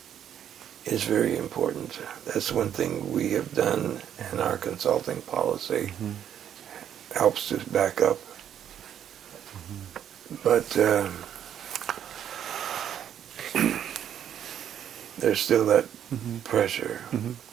is very important. That's one thing we have done in our consulting policy. Helps to back up. But there's still that pressure.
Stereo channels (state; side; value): quieter; left; 9.7 dB